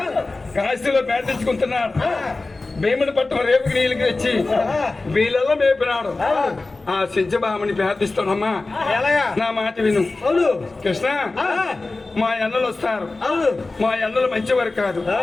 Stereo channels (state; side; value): quieter; right; 3.4 dB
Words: కాశీలో ప్రార్థించుకుంటున్నాడు. భీముని పట్టం రేపుకి నీళ్ళకి వచ్చి వీళ్ళల్లో మేపినాడు. ఆ సత్యభామని ప్రార్థిస్తానమ్మా, నా మాట విను. కృష్ణ మా అన్నలు వస్తారు, మా అన్నలు మంచివారు కాదు,